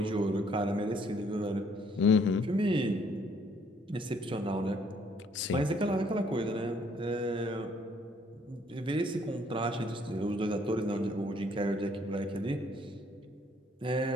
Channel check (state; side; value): normal; both; correlation 0.64